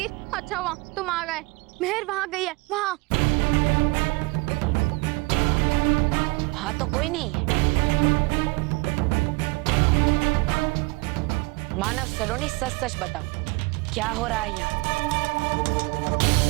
अच्छा हुआ तुम आ गए। मेहर वहाँ गई है, वहाँ। हाँ तो कोई नहीं है। मानव, सलोनी, सच सच बताओ, क्या हो रहा है यहाँ?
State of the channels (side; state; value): left; quieter; 27.9 dB